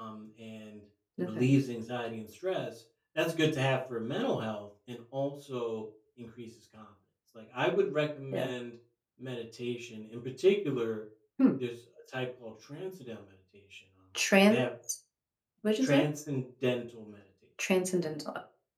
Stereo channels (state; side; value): identical; both; correlation 1.00